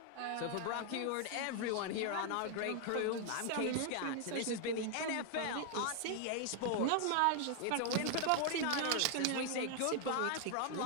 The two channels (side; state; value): both; different; correlation 0.00